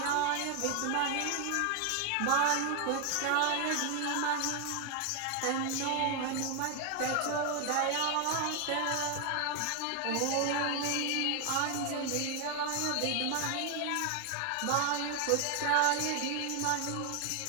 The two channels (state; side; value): different; both; correlation 0.00